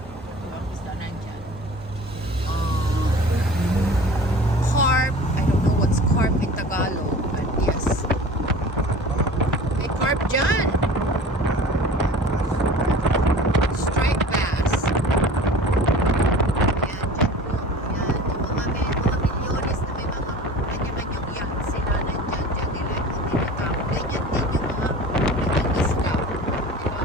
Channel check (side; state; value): both; normal; correlation 0.40